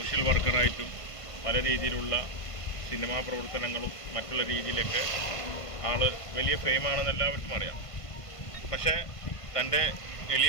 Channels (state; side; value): late; right; 1.5 ms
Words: വർക്കറായിട്ടും പല രീതിയിലുള്ള സിനിമാ പ്രവർത്തനങ്ങളും മറ്റുള്ള രീതിയിലൊക്കെ വലിയ ഫെയിമാണെന്ന് എല്ലാവർക്കും അറിയാം. പക്ഷേ തൻ്റെ